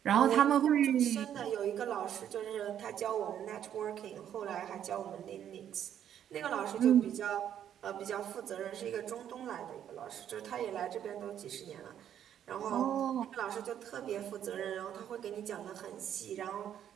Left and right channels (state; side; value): quieter; left; 9.9 dB